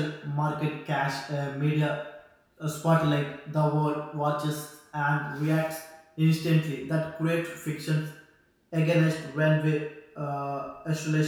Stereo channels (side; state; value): both; identical; correlation 1.00